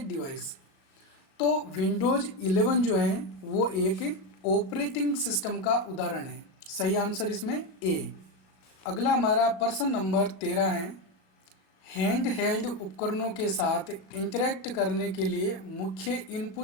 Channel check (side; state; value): right; late; 38 ms